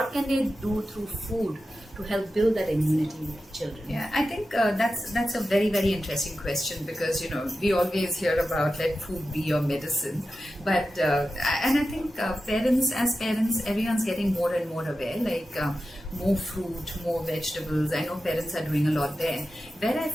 can they do through food to help build that immunity with children? Yeah, I think that's a very, very interesting question, because we always hear about let food be your medicine, but and I think as parents, everyone's getting more and more aware, like more fruit, more vegetables. I know parents are doing a lot there. Where I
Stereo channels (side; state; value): both; normal; correlation 0.92